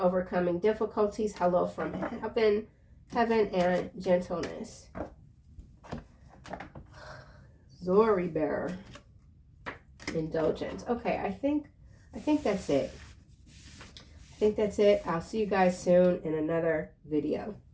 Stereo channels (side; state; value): both; identical; correlation 1.00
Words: difficulties. Hello from heaven, and gentleness. Zori bearer. Indulgence. Okay, I think that's it. I'll see you guys soon in another video.